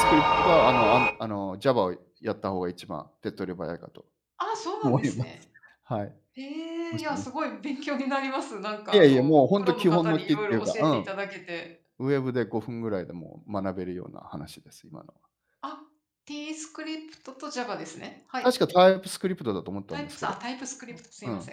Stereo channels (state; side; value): identical; both; correlation 1.00